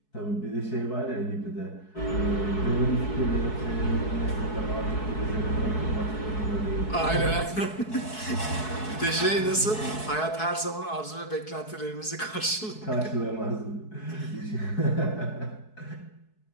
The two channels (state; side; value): late; right; 4.7 ms